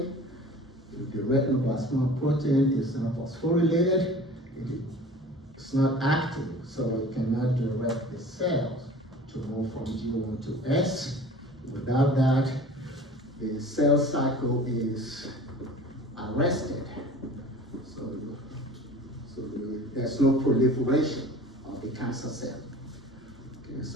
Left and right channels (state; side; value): normal; both; correlation 0.43